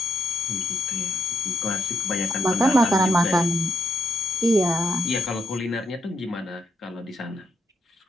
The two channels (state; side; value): normal; both; correlation 0.80